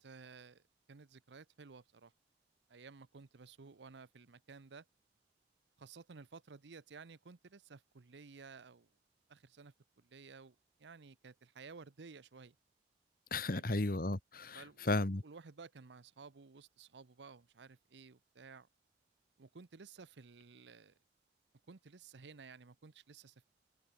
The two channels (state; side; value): normal; both; correlation 0.48